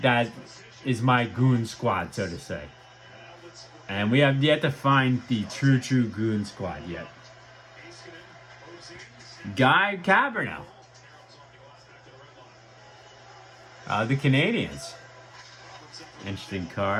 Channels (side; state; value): both; identical; correlation 1.00